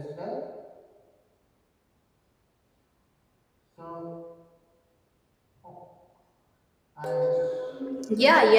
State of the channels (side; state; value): both; identical; correlation 1.00